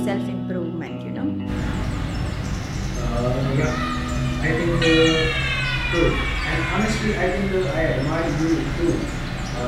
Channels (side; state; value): both; identical; correlation 1.00